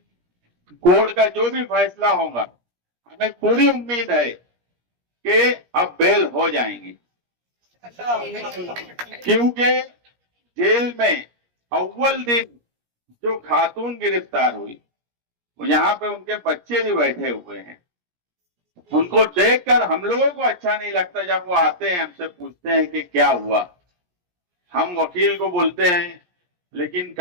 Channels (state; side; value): late; left; 17 ms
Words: कोर्ट का जो भी फैसला होगा, हमें पूरी उम्मीद है कि अब बेल हो जाएंगी, क्योंकि जेल में अव्वल दिन जो खातून गिरफ्तार हुई, यहाँ पे उनके बच्चे भी बैठे हुए हैं। उनको देखकर हम लोगों को अच्छा नहीं लगता। जब वो आते हैं, हमसे पूछते हैं कि क्या हुआ, हम वकील को बोलते हैं, लेकिन